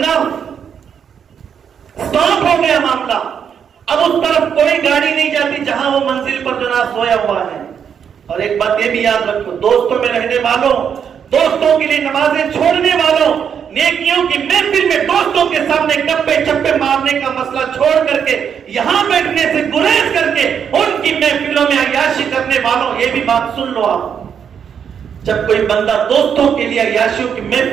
سٹاپ ہو گیا معاملہ۔ اب اس طرف کوئی گاڑی نہیں جاتی جہاں وہ منزل پر جناب سویا ہوا ہے۔ اور ایک بات یہ بھی یاد رکھو، دوستوں میں رہنے والوں، دوستوں کے لیے نمازیں چھوڑنے والوں، نیکیوں کی محفل میں دوستوں کے سامنے گپے چپے مارنے کا مسئلہ چھوڑ کر کے یہاں بیٹھنے سے گریز کر کے ان کی محفلوں میں عیاشی کرنے والوں، یہ بھی بات سن لو آپ۔ جب کوئی بندہ دوستوں کے لیے عیاشیوں کی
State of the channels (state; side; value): quieter; left; 7.7 dB